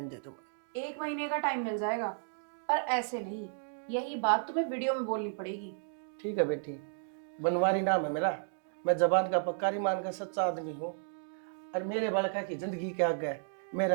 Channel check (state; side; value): silent; left; digital silence